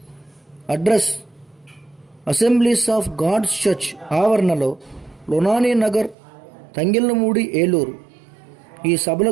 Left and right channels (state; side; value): drops out; left; at 6.2 s